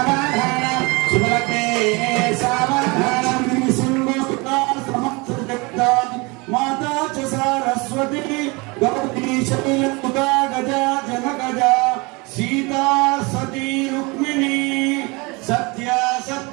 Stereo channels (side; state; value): left; quieter; 26.8 dB